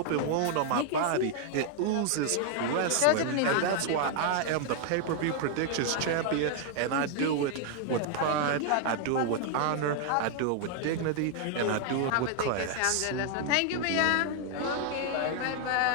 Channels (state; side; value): different; both; correlation 0.00